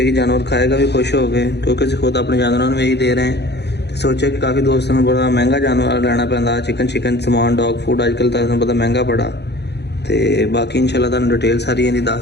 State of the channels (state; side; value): late; right; 0.49 ms